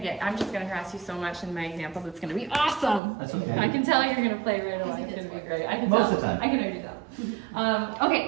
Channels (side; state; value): left; drops out; at 3.0 s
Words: just gonna harass you so much in my examples. It's gonna be awesome. That's okay. I can tell you're gonna play right away. It's gonna be great. I can Most tell. of the time. I can already tell.